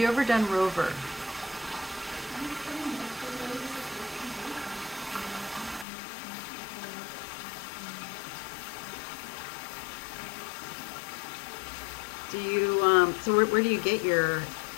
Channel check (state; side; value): drops out; right; at 5.9 s